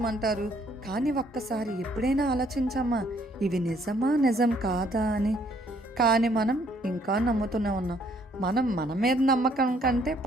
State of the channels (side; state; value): both; normal; correlation 0.65